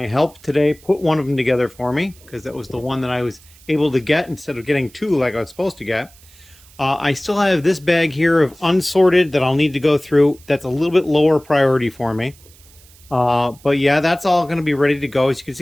help today put one of them together for me, because that was the one that I was able to get instead of getting 2 like I was supposed to get. I still have this bag here of unsorted that I'll need to go through. That's a little bit lower priority for me. But yeah, that's all going to be ready to go. As you can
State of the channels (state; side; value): noise; right; hiss, 26 dB below the sound